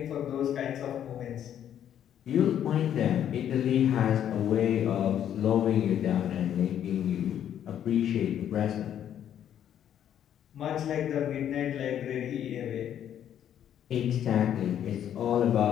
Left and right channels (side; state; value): right; quieter; 10.0 dB